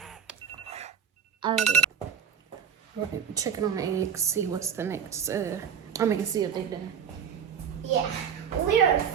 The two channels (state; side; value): quieter; left; 7.7 dB